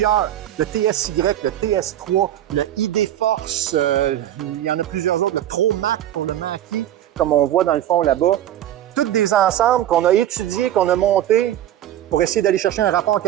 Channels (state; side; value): quieter; left; 12.1 dB